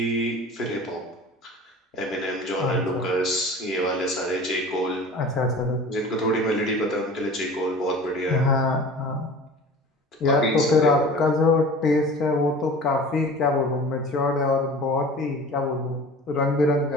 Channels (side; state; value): both; normal; correlation 0.40